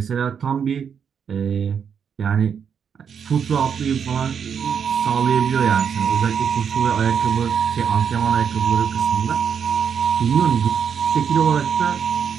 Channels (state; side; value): quieter; left; 7.3 dB